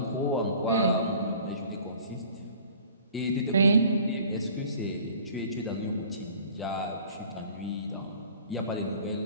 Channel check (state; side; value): inverted; both; correlation -0.49